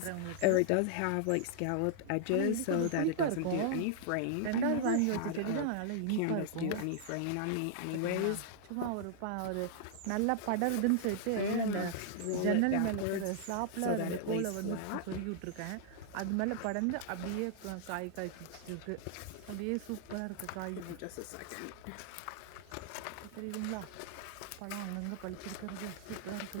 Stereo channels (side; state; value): both; different; correlation -0.01